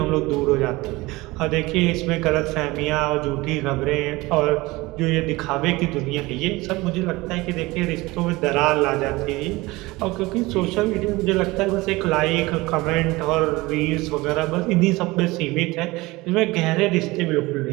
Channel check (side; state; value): left; quieter; 21.4 dB